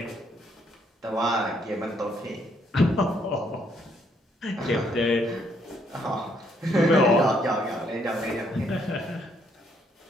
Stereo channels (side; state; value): both; normal; correlation 0.70